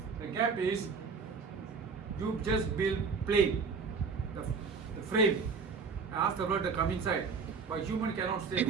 The gap is you just build plain, the frame. Ask the bird to come inside. But human cannot stay,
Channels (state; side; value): quieter; left; 5.2 dB